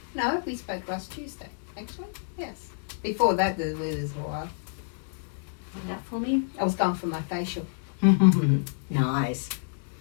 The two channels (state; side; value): silent; right; digital silence